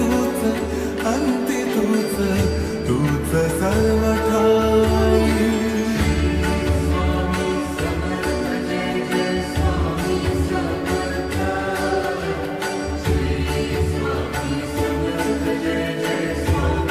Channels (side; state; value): both; identical; correlation 1.00